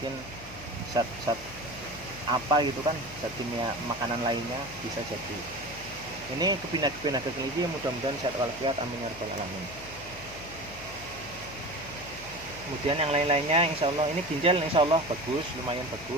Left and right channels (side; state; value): left; noise; hum, 16 dB below the sound